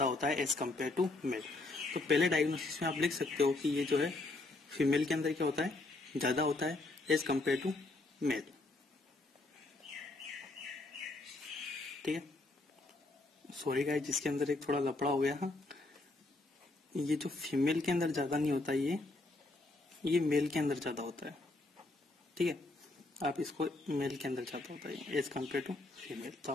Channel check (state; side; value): quieter; right; 3.1 dB